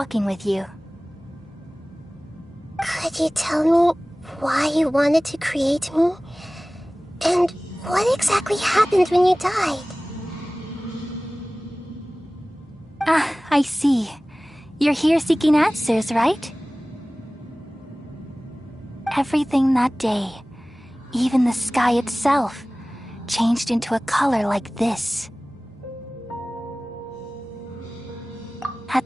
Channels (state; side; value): normal; both; correlation 0.98